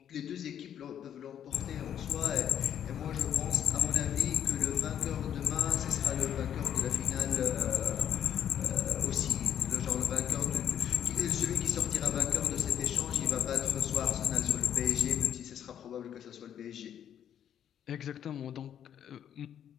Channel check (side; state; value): right; quieter; 9.6 dB